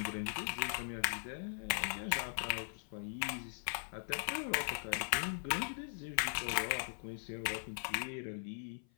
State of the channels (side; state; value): right; silent; 51 dB below the other